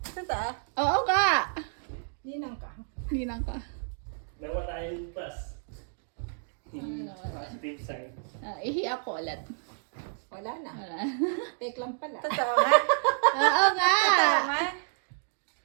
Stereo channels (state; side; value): silent; left; digital silence